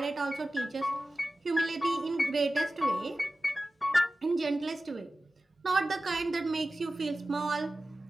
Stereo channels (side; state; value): both; normal; correlation 0.95